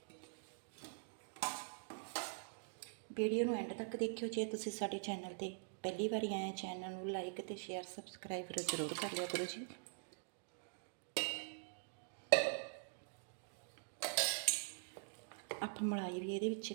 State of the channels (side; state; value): left; silent; digital silence